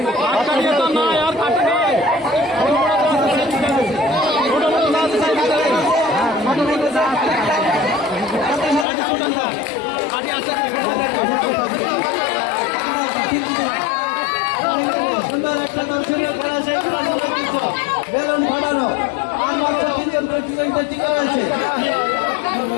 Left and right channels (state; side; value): drops out; right; at 8.8 s